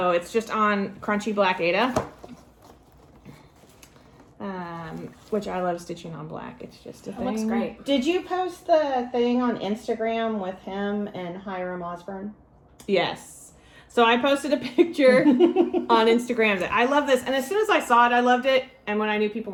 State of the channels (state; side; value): identical; both; correlation 1.00